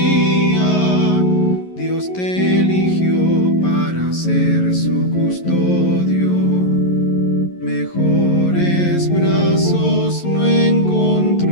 Dios te eligió para ser su custodio. Mejores brazos no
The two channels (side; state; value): right; late; 11 ms